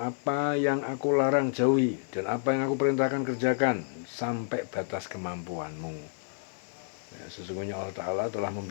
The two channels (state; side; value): silent; right; 58 dB below the other